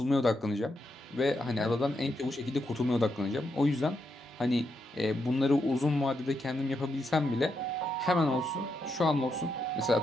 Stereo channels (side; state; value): both; normal; correlation 0.82